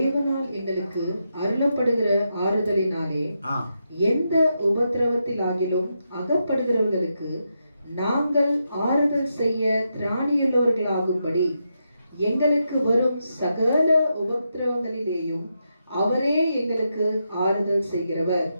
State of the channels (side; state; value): both; inverted; correlation -0.84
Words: எங்களுக்கு அருளப்படுகிற ஆறுதலினாலே எந்த உபத்திரவத்திலாகிலும் அகப்படுகிறவர்களுக்கு நாங்கள் ஆறுதல் செய்ய திராணியுள்ளவர்களாகும்படி எங்களுக்கு வரும் சகல உபத்திரவங்களிலேயும் அவரே எங்களுக்கு ஆறுதல் செய்கிறவர்.